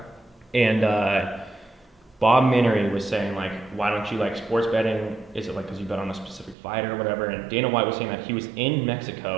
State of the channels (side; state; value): left; drops out; at 6.6 s